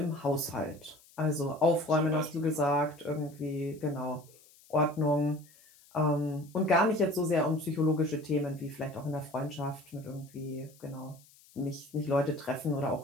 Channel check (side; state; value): left; noise; hiss, 26 dB below the sound